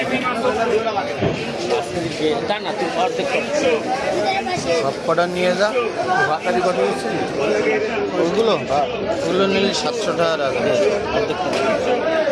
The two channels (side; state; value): both; identical; correlation 1.00